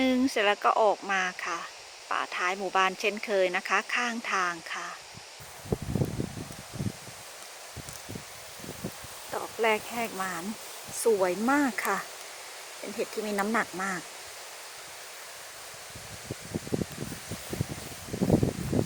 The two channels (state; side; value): identical; both; correlation 1.00